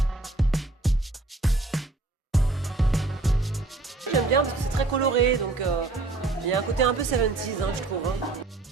J'aime bien parce que c'est très coloré, donc il y a un côté un peu 70s, je trouve.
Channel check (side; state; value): left; quieter; 3.3 dB